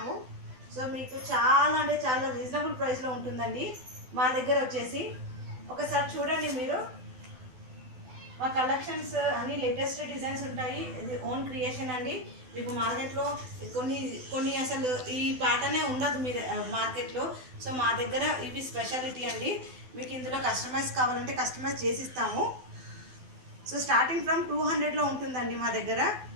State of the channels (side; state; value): left; late; 12 ms